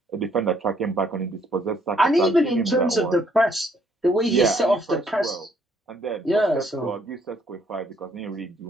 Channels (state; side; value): normal; both; correlation 0.67